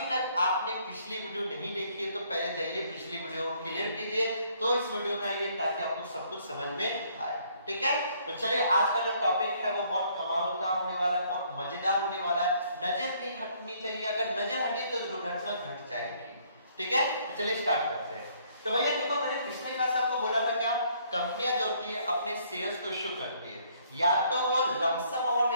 तक आपने पिछली वीडियो नहीं देखी है तो पहले जाइए पिछली वीडियो को क्लियर कीजिए, तो इस वीडियो में आइए ताकि आपको सब कुछ समझ में आए। ठीक है, तो चलिए आज का जो टॉपिक है वो बहुत कमाल का होने वाला है, बहुत मजेदार होने वाला है। नजर नहीं हटनी चाहिए, अगर नजर हटी तो दुर्घटना घट जाएगी। ठीक है, तो चलिए स्टार्ट करते हैं। तो भैया देखो, मैंने पिछले क्लास आपको बोला था क्या, कंपनियां जो होती है अपने शेयर्स को इशू करती है, या तो वो लमसम अमाउंट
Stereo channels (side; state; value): both; inverted; correlation -0.65